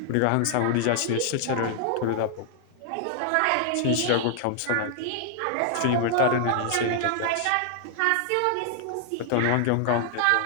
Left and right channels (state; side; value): different; both; correlation 0.00